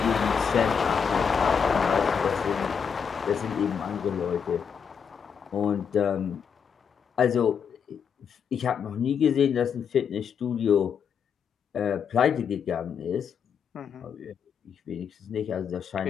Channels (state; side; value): quieter; right; 7.0 dB